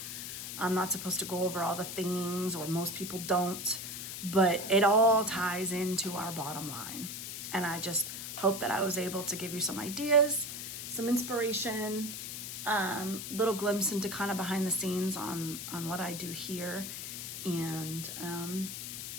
I'm not supposed to go over all the things, or most people don't, but it all ties into our bottom line. And I just hope that I was able to give you some ideas, some inspiration, little glimpse into kind of behind the scenes on what I do here. And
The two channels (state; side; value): noise; left; hiss, 7 dB below the sound